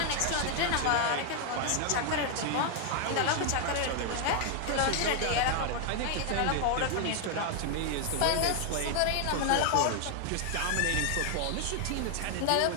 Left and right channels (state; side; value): different; both; correlation 0.00